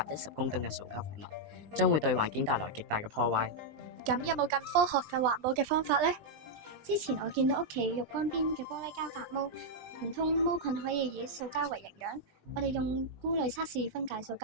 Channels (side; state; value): left; late; 20 ms